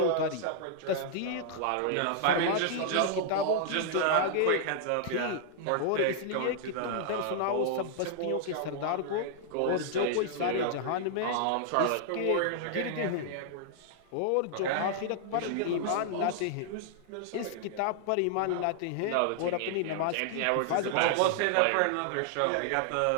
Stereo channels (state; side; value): different; both; correlation -0.01